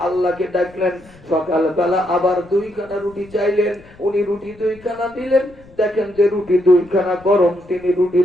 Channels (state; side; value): noise; left; rumble, 24 dB below the sound